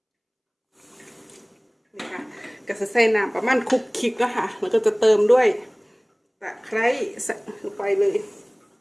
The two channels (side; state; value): both; identical; correlation 1.00